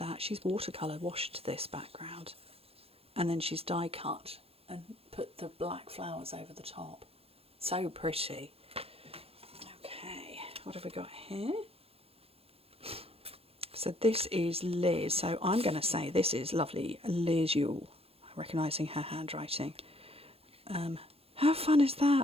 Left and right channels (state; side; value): late; left; 0.28 ms